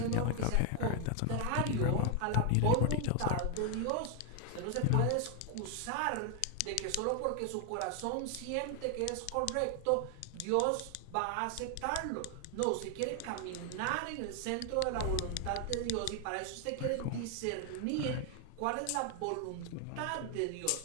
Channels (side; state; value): both; different; correlation 0.01